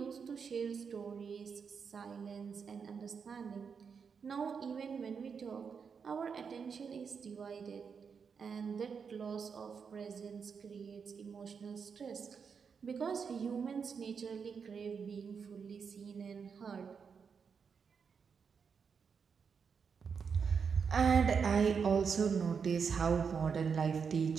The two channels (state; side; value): quieter; left; 6.1 dB